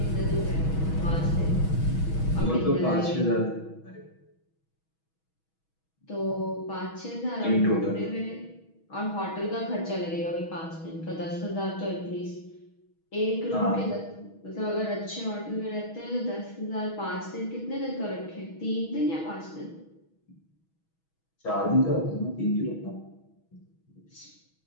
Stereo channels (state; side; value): late; right; 6.2 ms